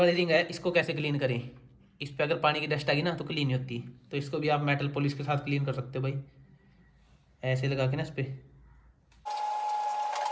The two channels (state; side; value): identical; both; correlation 1.00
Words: रिंग है इसको कैसे क्लीन करें। इस पर अगर पानी की डस्ट आ गई ना तो क्लीन नहीं होती, तो इसको भी आप मेटल पॉलिश के साथ क्लीन कर सकते हो भाई, ऐसे लगा के ना इस पर।